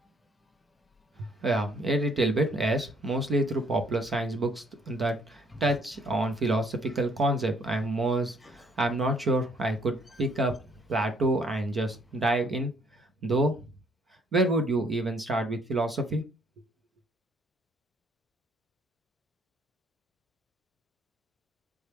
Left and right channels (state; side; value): normal; both; correlation 0.65